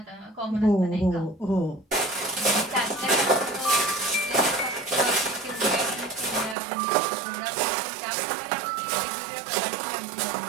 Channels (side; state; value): left; drops out; at 6.6 s